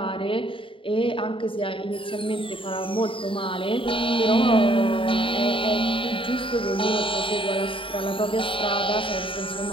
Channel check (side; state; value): right; late; 0.25 ms